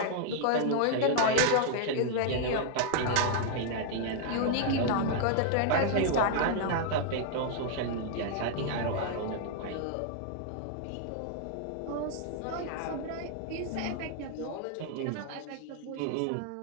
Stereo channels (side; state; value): both; different; correlation 0.00